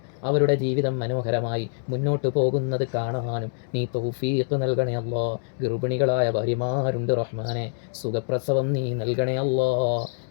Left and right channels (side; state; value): right; silent; digital silence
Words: അവരുടെ ജീവിതം മനോഹരമായി മുന്നോട്ട് പോകുന്നത് കാണാനും നീ തൗഫീഖ് നൽകണേ അല്ലാ. ഗർഭിണികളായ ഭാര്യമാരുണ്ട് റഹ്മാനെ, സുഖപ്രസവം നീ നൽകണേ അല്ലാ.